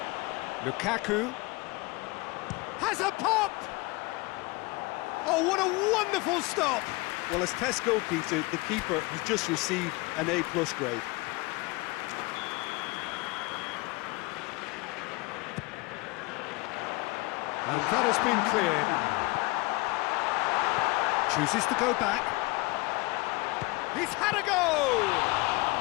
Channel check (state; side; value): quieter; right; 24.5 dB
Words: Lukaku has a pop! Oh, what a wonderful stop! Well, as tests go, Peter, the keeper has just received an A+ grade. And that has been cleared. Chooses to go back. He's had a go!